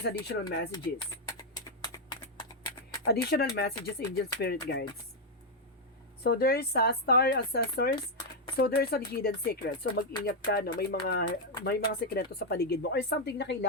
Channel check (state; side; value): normal; both; correlation 0.00